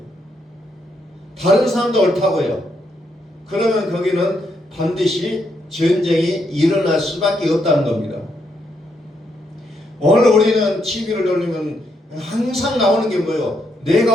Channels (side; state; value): both; normal; correlation 0.77